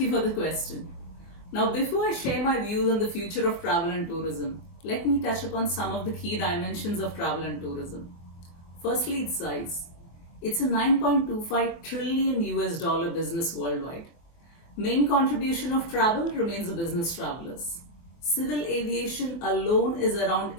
for the question. Now, before I share my views on the future of travel and tourism, let me touch upon some of the key dimensions of travel and tourism. Firstly, its size. It's a 9.25 trillion US dollar business worldwide. Main contribution of travel remains the business travelers. Civil aviation alone is around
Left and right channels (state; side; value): late; right; 24 ms